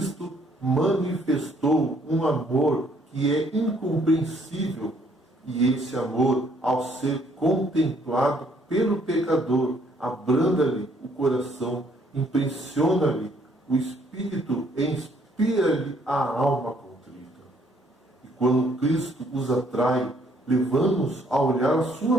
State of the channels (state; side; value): normal; both; correlation 0.65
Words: manifestou um amor que é incompreensível, e esse amor, ao ser contemplado pelo pecador, abranda-lhe o coração, impressiona-lhe o espírito e inspira-lhe a alma contrita. E quando Cristo os atrai, levamos a olhar a